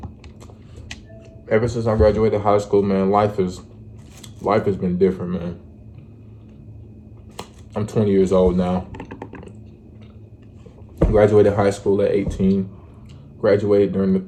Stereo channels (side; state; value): both; identical; correlation 1.00